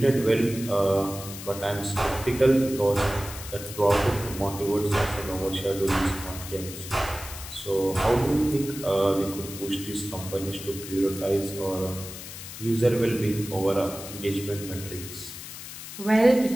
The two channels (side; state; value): left; noise; hiss, 11 dB below the sound